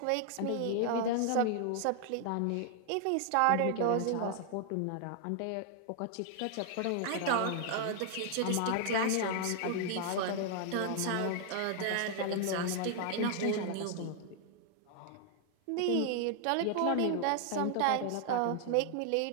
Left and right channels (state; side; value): different; both; correlation 0.00